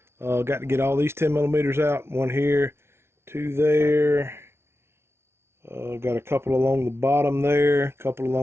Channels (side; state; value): left; late; 0.12 ms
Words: got to get all these 10 millimeters out. One here, 2 there. Got a couple along the bottom there, a couple